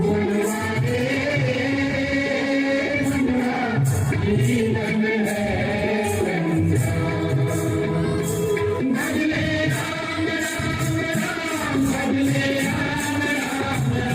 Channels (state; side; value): identical; both; correlation 1.00